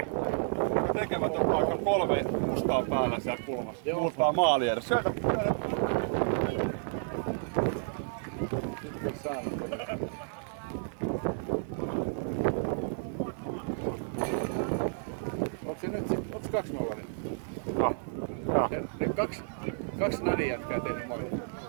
Tekevät vaikka 3 mustaa päällä siellä kulmassa. Muuttaa maali edes. Syötä! Onko se nyt sit, onko 2-0? No, joo. Ja kaksi Nadi jätkää tehnyt molin.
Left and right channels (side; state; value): left; silent; digital silence